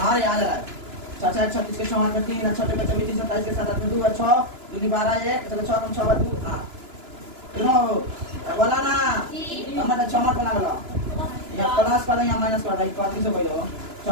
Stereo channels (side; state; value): left; late; 2.9 ms